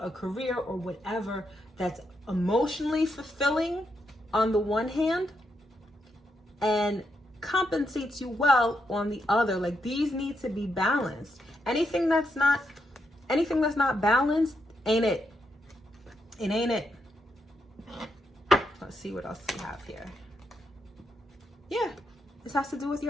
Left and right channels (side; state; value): both; normal; correlation 0.82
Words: a career, or whatever that's emotionally fulfilling on the one hand and compensates you well on the other. Like, these need to be balanced. Anything that's not balanced ain't it. It ain't it. Let's see what else we have here. Yeah, this has to do with